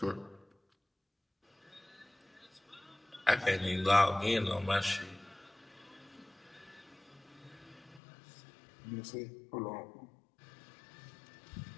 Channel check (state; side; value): drops out; right; at 8.0 s